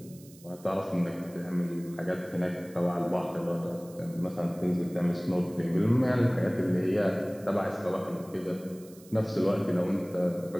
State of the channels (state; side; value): noise; right; hiss, 23 dB below the sound